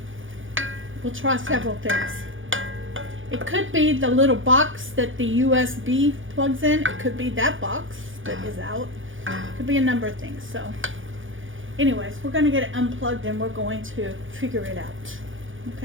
We'll try several things. It could be the little box that the USB plugs in. It could be that box that is out. It could be a number of things. So anyways, we're going to get it unplugged and we're going to figure it out.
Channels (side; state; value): left; late; 0.57 ms